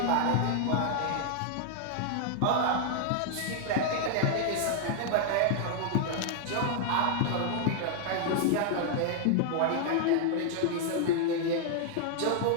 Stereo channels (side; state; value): both; different; correlation 0.00